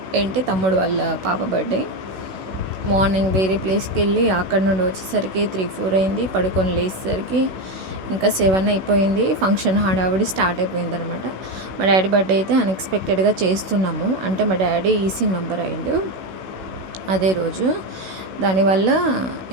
తమ్ముడు వాళ్ళ పాప బర్త్డే. మార్నింగ్ వేరే ప్లేస్కి వెళ్ళి అక్కడ నుండి వచ్చేసరికి 3-4 అయింది. పడుకొని లేచేసరికి ఇంకా 7 అయిపోయింది. ఫంక్షన్ హడావిడి స్టార్ట్ అయిపోయింది అనమాట. మా డాడీ బర్త్డే అయితే అన్ఎక్స్పెక్టెడ్గా చేస్తున్నాము. అంటే మా డాడీ ఈసీ మెంబర్ అయిండు అదే రోజు. దానివల్ల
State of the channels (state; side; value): late; left; 16 ms